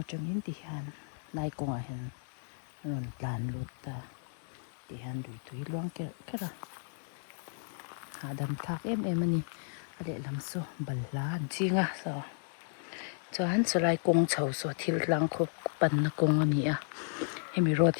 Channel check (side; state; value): right; silent; digital silence